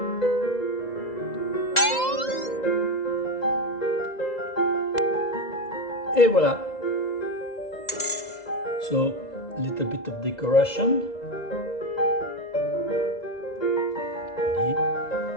et voilà. So, a little bit of decoration. Ready.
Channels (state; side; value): late; right; 2.0 ms